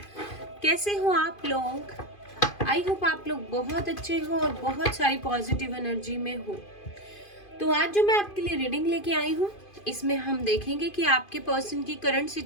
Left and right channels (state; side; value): late; right; 2.5 ms